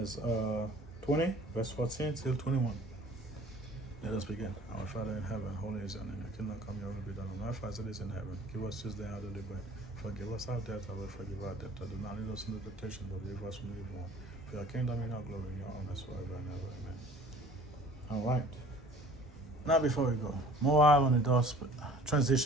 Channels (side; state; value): both; normal; correlation 0.49